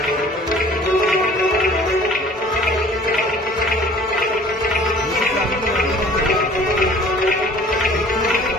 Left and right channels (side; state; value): both; normal; correlation 0.50